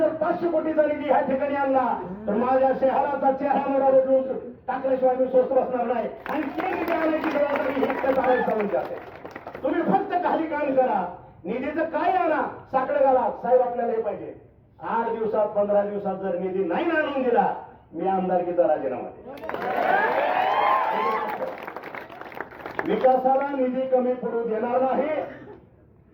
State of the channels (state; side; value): identical; both; correlation 1.00